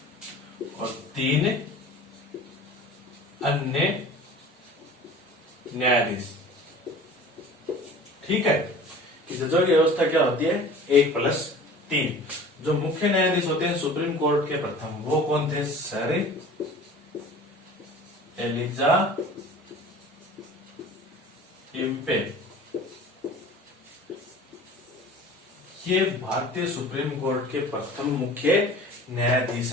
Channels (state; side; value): normal; both; correlation 0.42